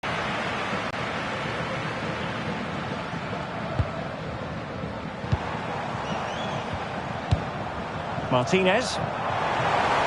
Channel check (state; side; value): identical; both; correlation 1.00